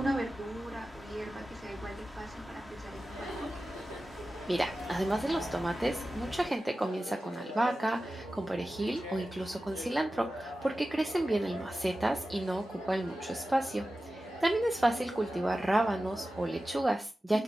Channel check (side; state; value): both; normal; correlation 0.94